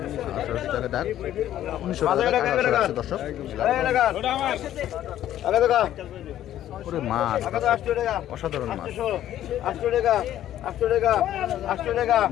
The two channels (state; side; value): quieter; right; 12.2 dB